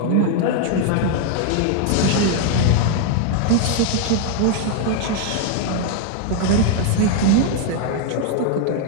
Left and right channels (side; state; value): both; different; correlation 0.01